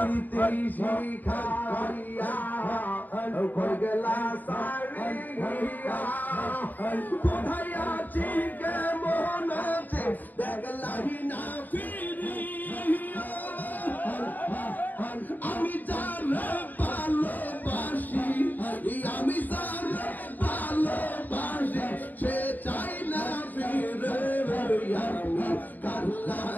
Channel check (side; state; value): right; late; 0.085 ms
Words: শিখাইয়া কই গেলা সারিয়া কোথায় আছি কেমন আছে দেখলাহি না ফিরিয়া আমি যারে ভালোবাসি আমি যারে ভালোবাসি সে চাই না ফিরে আমি কার